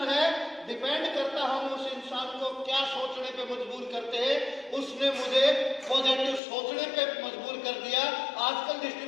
है, डिपेंड करता हम उस इंसान को क्या सोचने पे मजबूर करते हैं। उसने मुझे पॉजिटिव सोचने पे मजबूर कर दिया। आजकल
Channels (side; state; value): right; drops out; at 6.4 s